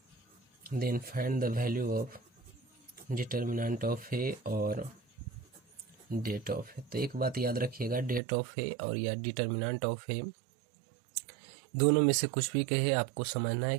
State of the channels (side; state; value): left; drops out; at 8.2 s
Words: determinant of A और डेट ऑफ A। तो एक बात याद रखिएगा, डेट ऑफ A और या डिटर्मिनेंट ऑफ A दोनों में से कुछ भी कहे, आपको समझना है